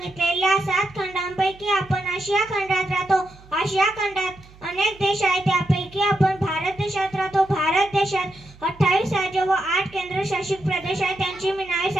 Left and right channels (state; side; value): noise; right; hum, 23 dB below the sound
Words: 7 खंडांपैकी आपण आशिया खंडात राहतो. आशिया खंडात अनेक देश आहेत. त्यापैकी आपण भारत देशात राहतो. भारत देशात 28 राज्य व 8 केंद्रशासित प्रदेश आहेत. त्यांची मी नावे